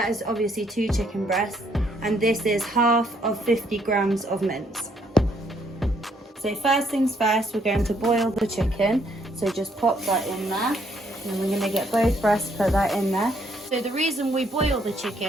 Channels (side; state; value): both; normal; correlation 0.69